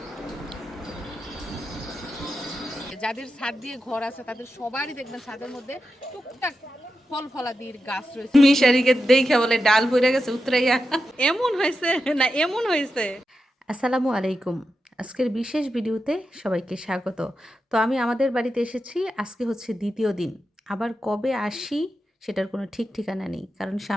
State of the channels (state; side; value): normal; both; correlation 0.89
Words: যাদের ছাদ দিয়ে ঘর আছে তাদের সবারই দেখবেন ছাদের মধ্যে টুকটাক ফল ফলাদির গাছ রয়েছে। মিশারিকে দেখে বলে ডাল পড়ে গেছে উতরাইয়া। এমন হয়েছে না এমন হয়েছে। আসসালামু আলাইকুম। আজকের বিশেষ ভিডিওতে সবাইকে স্বাগত। তো আমি আমাদের বাড়িতে এসেছি, আজকে হচ্ছে দ্বিতীয় দিন। আবার কবে আসি সেটার কোনো ঠিক ঠিকানা নেই, কারণ